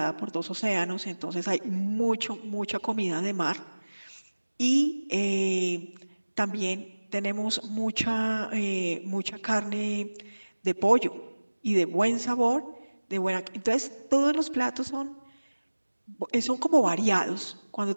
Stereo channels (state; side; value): inverted; both; correlation -1.00